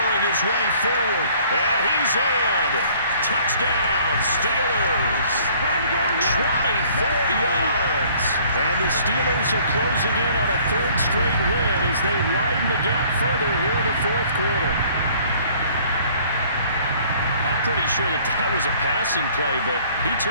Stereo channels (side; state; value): both; inverted; correlation -0.57